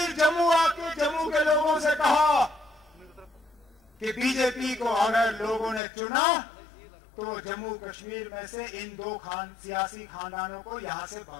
जम्मू आके जम्मू के लोगों से कहा कि बीजेपी को अगर लोगों ने चुना तो जम्मू कश्मीर में से इन 2 सियासी खानदानों को यहां से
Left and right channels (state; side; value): drops out; right; at 5.8 s